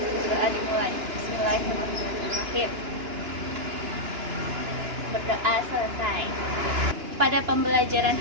Doa dimulai. Bismillahirrahmanirrahim. Berdoa selesai. Pada pembelajaran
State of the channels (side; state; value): left; late; 2.9 ms